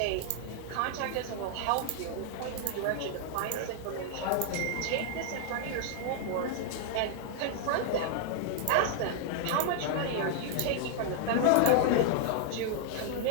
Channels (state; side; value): different; both; correlation -0.01